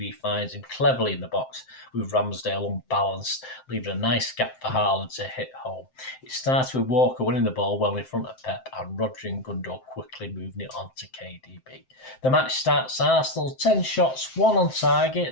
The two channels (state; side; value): late; right; 7.7 ms